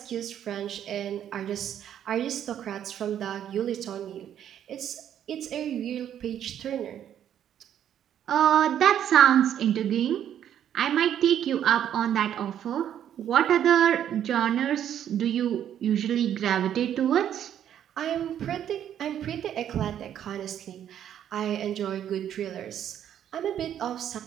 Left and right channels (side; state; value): left; quieter; 10.1 dB